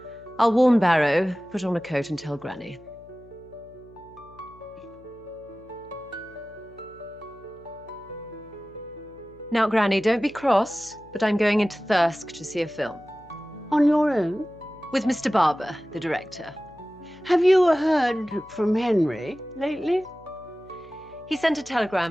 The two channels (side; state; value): left; noise; hum, 25 dB below the sound